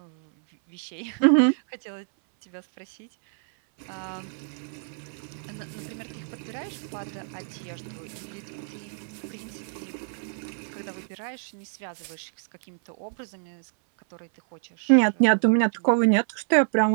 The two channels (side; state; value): left; silent; 60 dB below the other